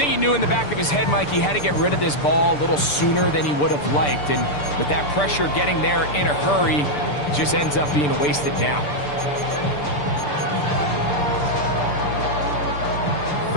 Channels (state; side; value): late; right; 6.8 ms